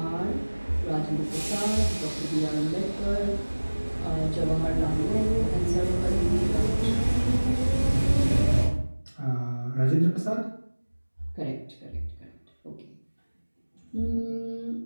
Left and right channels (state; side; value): inverted; both; correlation -1.00